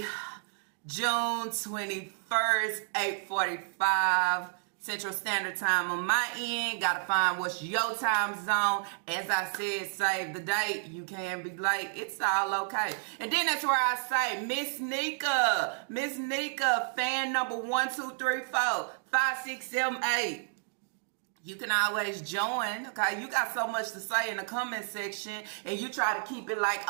June 21st, 8:45. Central Standard Time on my end. Gotta find what's your time zone. As I said, save the date. You can be late. It's all okay. And then that's where I say, Miss Nika, fan number 1, 2, 3, 4, 5, 6, 7, 8. You can always join, okay? You got so much to say in the comment section, and you try to keep it like,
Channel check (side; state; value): left; silent; digital silence